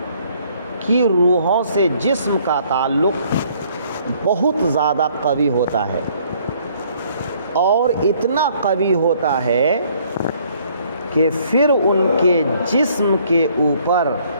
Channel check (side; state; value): both; inverted; correlation -0.63